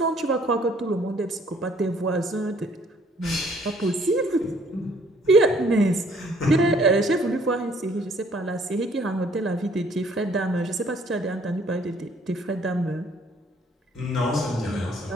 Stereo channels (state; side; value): normal; both; correlation 0.61